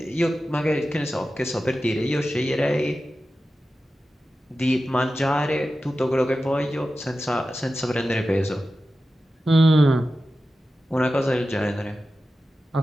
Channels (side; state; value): both; normal; correlation 0.93